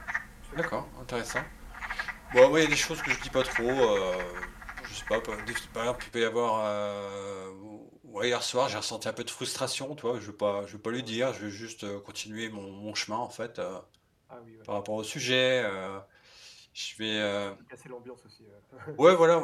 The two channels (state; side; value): identical; both; correlation 1.00